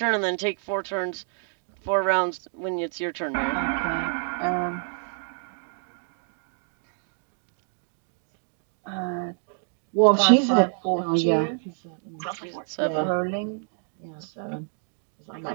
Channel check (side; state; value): left; silent; 57 dB below the other